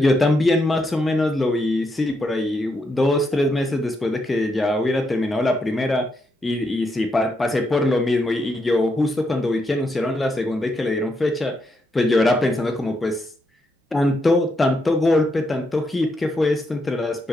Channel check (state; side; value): normal; both; correlation 0.80